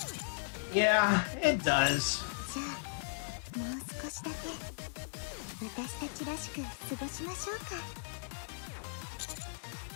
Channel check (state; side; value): silent; right; digital silence